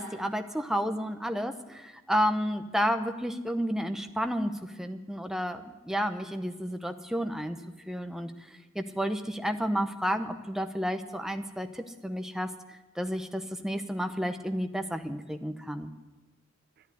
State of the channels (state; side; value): normal; both; correlation 0.89